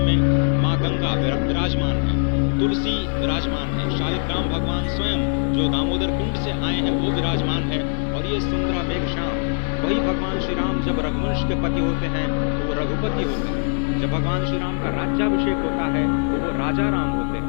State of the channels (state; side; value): silent; right; digital silence